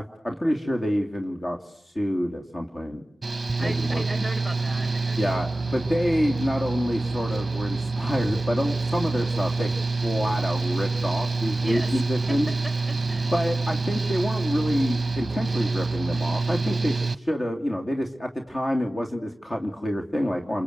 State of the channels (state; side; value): normal; both; correlation 0.96